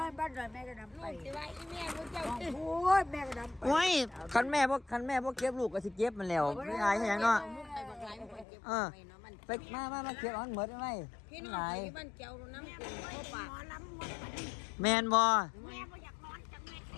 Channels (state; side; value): drops out; right; at 8.5 s